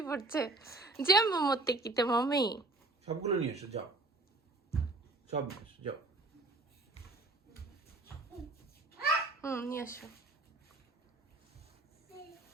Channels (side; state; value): left; quieter; 3.1 dB